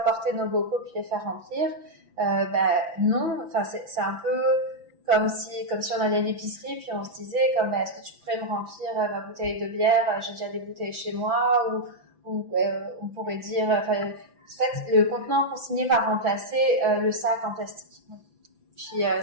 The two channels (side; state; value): left; late; 5.9 ms